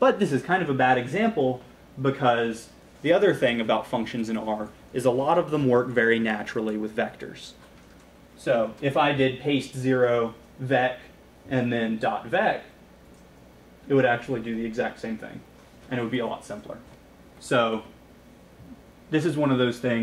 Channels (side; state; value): both; identical; correlation 1.00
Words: this is kind of a bad example because the other thing about functions in R is a lot of them work very naturally with vectors. So if I did paste 0 vec and then .vec, it would actually do the exact same thing, and it would be a lot simpler. So this is one of those